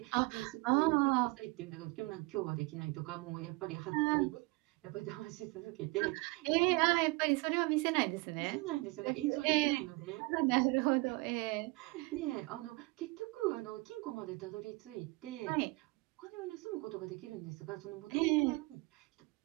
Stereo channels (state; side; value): quieter; left; 25.1 dB